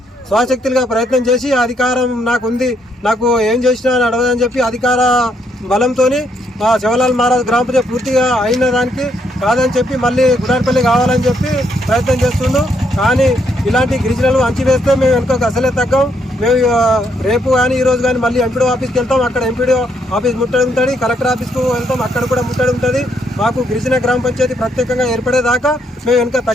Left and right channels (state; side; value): normal; both; correlation 0.73